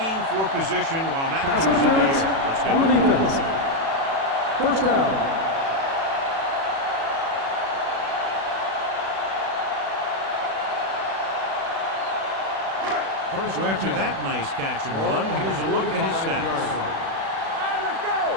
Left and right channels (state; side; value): late; left; 36 ms